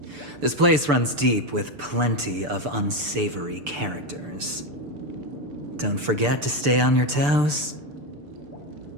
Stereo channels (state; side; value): late; left; 6.8 ms